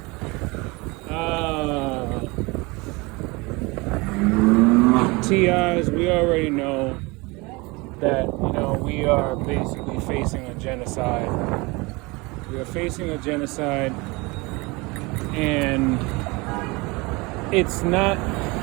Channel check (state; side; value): quieter; left; 25.2 dB